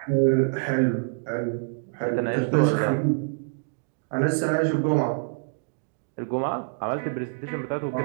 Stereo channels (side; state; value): left; silent; digital silence